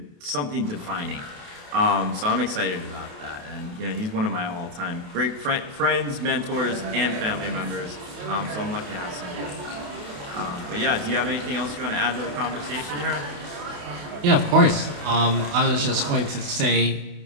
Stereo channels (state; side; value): late; left; 28 ms